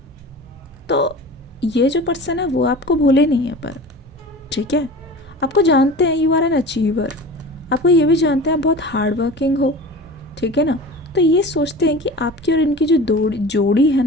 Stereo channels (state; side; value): normal; both; correlation 0.36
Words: तो ये जो पर्सन है वो आपको भूले नहीं है, पर ठीक है, आपको जानते हैं यू आर एन अचीवर। आपको ये भी जानते हैं आप बहुत हार्ड वर्किंग हो, ठीक है ना। तो ये सोचते हैं कि आपकी और इनकी जो जोड़ी है